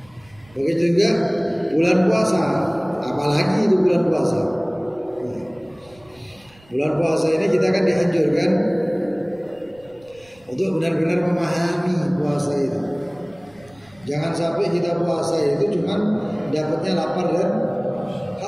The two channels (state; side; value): noise; right; rumble, 28 dB below the sound